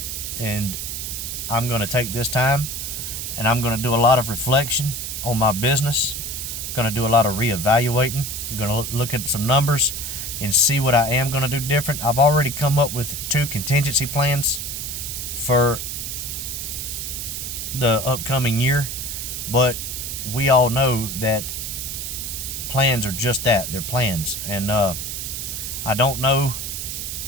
And I'm going to take this time and I'm going to do a lot of reflection on my business. I'm going to do a lot of reevaluating. I'm going to look at some numbers and see what I am going to do different. I've already come up with 2 contingency plans for the upcoming year, but we all know that plans are just that. They're plans. And I don't know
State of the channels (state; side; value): noise; right; hiss, 5 dB below the sound